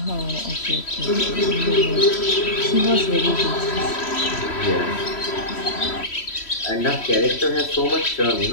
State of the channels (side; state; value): right; late; 3.1 ms